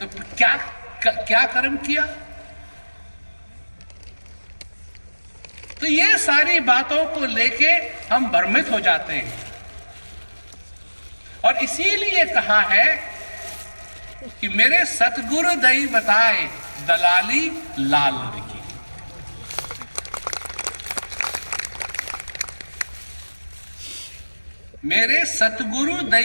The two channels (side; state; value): both; inverted; correlation -1.00